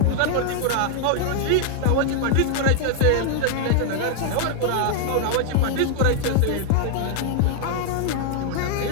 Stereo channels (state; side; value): different; both; correlation 0.00